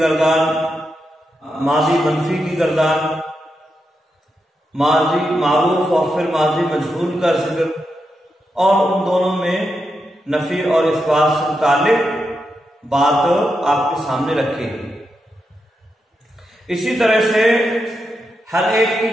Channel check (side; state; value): both; normal; correlation 0.86